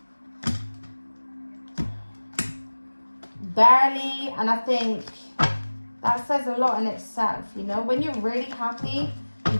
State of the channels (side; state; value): both; inverted; correlation -1.00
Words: And I think that says a lot in itself, you know. When you're really happy, you